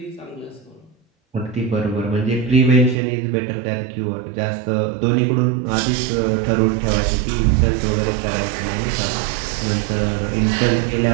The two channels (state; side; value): drops out; left; at 3.0 s